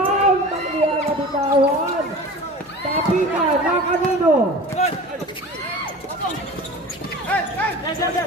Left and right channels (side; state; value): both; normal; correlation 0.37